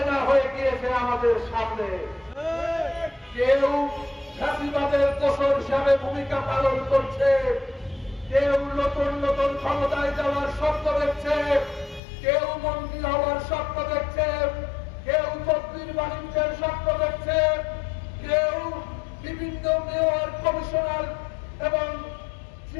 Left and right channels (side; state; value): right; drops out; at 12.0 s